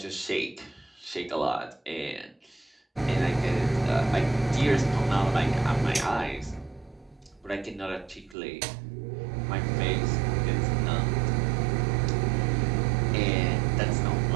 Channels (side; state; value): left; drops out; at 8.3 s